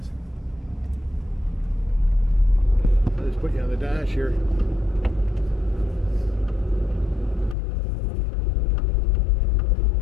I'll just put you on the dash here.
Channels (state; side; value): drops out; right; at 7.6 s